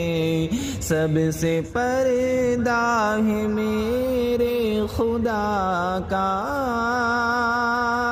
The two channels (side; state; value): both; identical; correlation 1.00